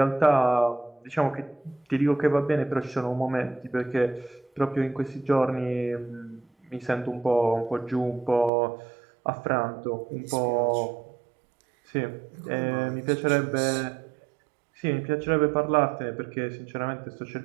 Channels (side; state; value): left; drops out; at 8.5 s